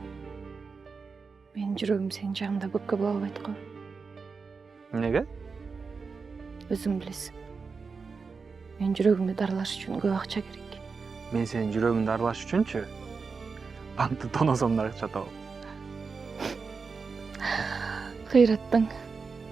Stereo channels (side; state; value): left; quieter; 4.9 dB